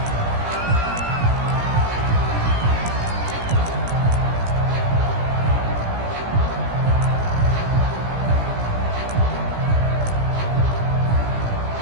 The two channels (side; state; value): left; late; 17 ms